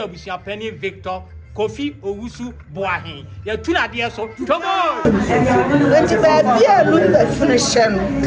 abusia pani Victor Kofi Owusu Boahin ya tu na de so tomo enti ba bia lu da finishen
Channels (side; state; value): both; identical; correlation 1.00